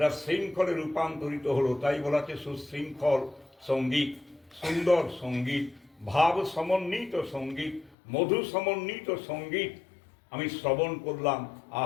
শৃঙ্খলে রূপান্তরিত হলো। তাই বলা হচ্ছে সুশৃঙ্খল সঙ্গীত, সুন্দর সঙ্গীত, ভাব সমন্বিত সঙ্গীত, মধু সমন্বিত সঙ্গীত আমি শ্রবণ করলাম।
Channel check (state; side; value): drops out; right; at 8.0 s